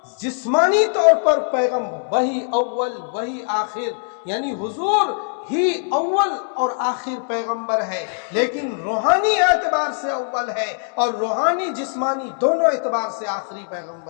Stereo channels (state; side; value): silent; right; 65 dB below the other